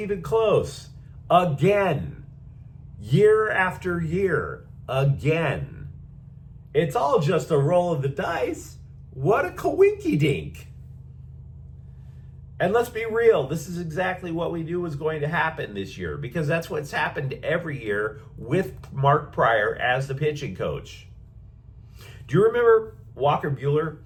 close. Again. Year after year. Again. It's all just a roll of the dice. What a coinky-dink. And let's be real, this is exactly what we knew was going to happen this year, because that's what's happened every year with Mark Prior as the pitching coach. Do you remember Walker Buehler,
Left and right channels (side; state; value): both; identical; correlation 1.00